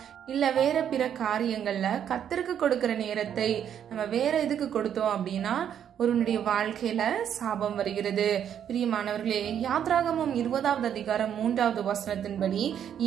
இல்ல வேற பிற காரியங்கள்ல கர்த்தருக்கு கொடுக்கிற நேரத்தை நம்ம வேற எதுக்கு கொடுத்தோம் அப்படின்னா ஒருவனுடைய வாழ்க்கையில சாபம் வருகிறது. பிரியமானவர்களே, யாத்ராகமம் 20வது அதிகாரம் 3வது வசனத்தின்படி,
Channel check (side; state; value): left; quieter; 9.2 dB